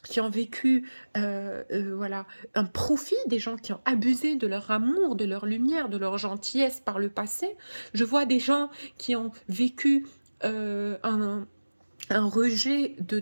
qui ont vécu voilà, un profit, des gens qui ont abusé de leur amour, de leur lumière, de leur gentillesse par le passé. Je vois des gens qui ont vécu un rejet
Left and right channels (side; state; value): both; inverted; correlation -1.00